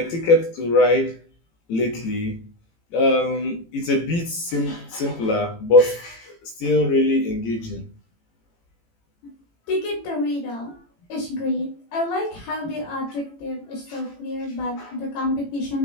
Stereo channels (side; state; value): right; late; 18 ms